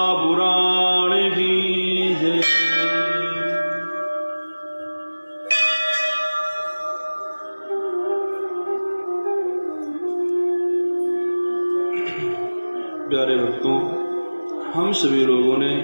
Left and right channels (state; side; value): inverted; both; correlation -1.00